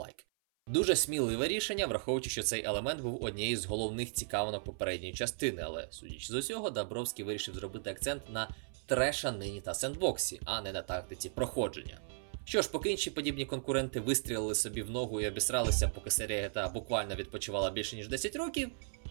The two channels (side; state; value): left; silent; 54 dB below the other